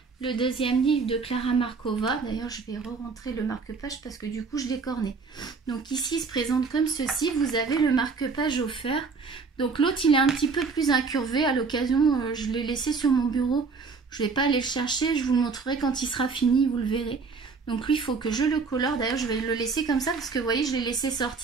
Le deuxième livre de Klara Markova. D'ailleurs je vais re-rentrer le marque-page parce que du coup je l'ai corné. Donc ici il se présente comme ceci. Vous avez le marque-page offert. Donc l'autre il est un petit peu plus incurvé. À l'occasion je l'ai laissé sur mon bureau. Je ne vais pas aller le chercher. Je vous le montrerai quand il sera fini. Vous le verrez. Donc lui il faut que je le colore. D'ailleurs je vais le laisser comme ça parce que vous voyez je l'ai laissé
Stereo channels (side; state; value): left; quieter; 4.7 dB